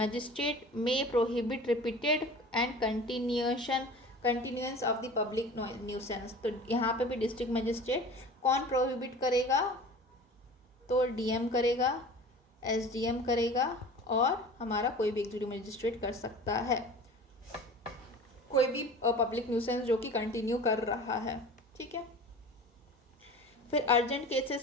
में prohibit repeated and continuance of the public nuisance. तो यहाँ पे भी डिस्ट्रिक्ट मजिस्ट्रेट कौन प्रोहिबिट करेगा, तो डीएम करेगा, एसडीएम करेगा, और हमारा कोई भी एग्जीक्यूटिव मजिस्ट्रेट कर सकता है, कोई भी पब्लिक न्यूसेंस जो कि कंटिन्यू कर रहा है, ठीक है। फिर अर्जेंट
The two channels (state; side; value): normal; both; correlation 0.39